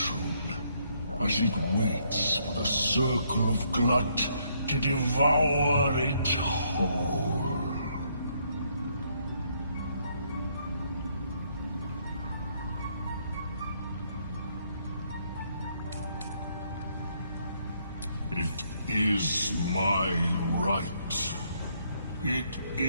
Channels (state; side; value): inverted; both; correlation -0.71